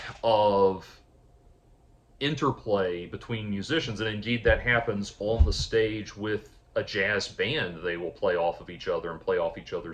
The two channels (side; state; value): both; identical; correlation 1.00